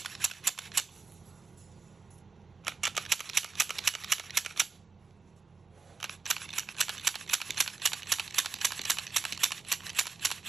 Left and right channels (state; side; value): quieter; left; 4.5 dB